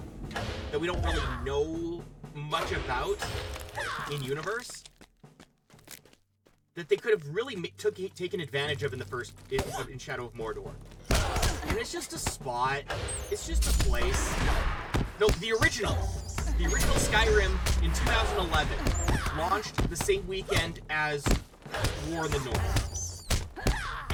that we don't really know much about in universe, that they could have really taken advantage of in the first in Shadow of Mordor. And it's just a spot. It's just a place. No, the original Skyrim in 2011 launched the same weekend as War in the North.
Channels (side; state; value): both; identical; correlation 1.00